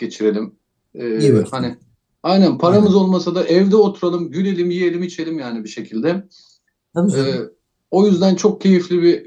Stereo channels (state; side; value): identical; both; correlation 1.00